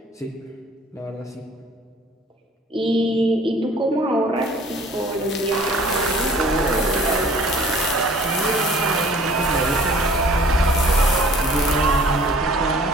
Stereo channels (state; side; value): normal; both; correlation 0.51